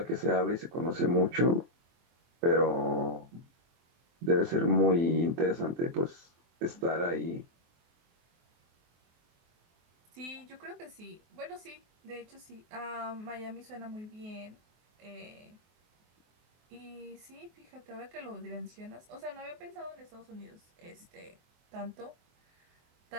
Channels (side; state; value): left; late; 23 ms